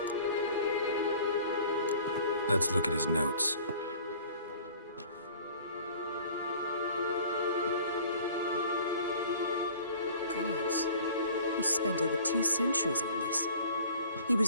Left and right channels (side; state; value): both; inverted; correlation -0.49